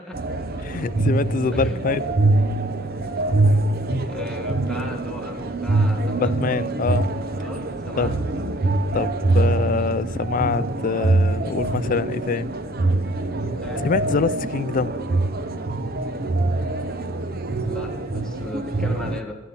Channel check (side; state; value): both; normal; correlation 0.57